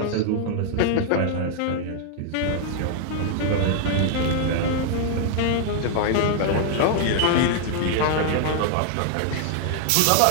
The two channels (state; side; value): different; both; correlation 0.00